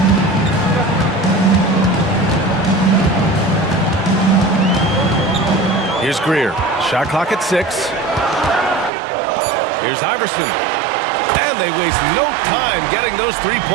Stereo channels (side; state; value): left; drops out; at 8.9 s